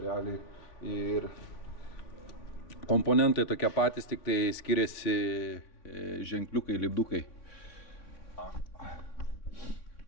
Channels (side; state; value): right; late; 3.5 ms